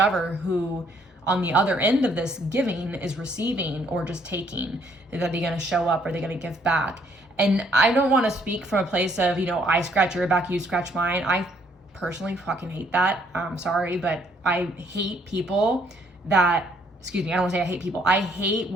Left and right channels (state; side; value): normal; both; correlation 0.66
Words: who on the other end of this giving is receiving or just taking. Are they going to show up? Are they going to give back? And I don't want to speak from a place of, I scratch your back, you scratch mine. I personally fucking hate that. I'm sorry, but I hate people that, I don't want to say I hate people. I hate